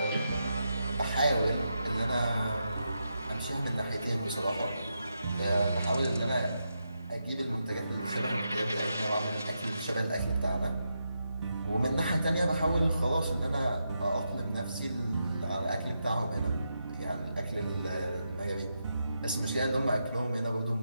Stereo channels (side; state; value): both; inverted; correlation -0.85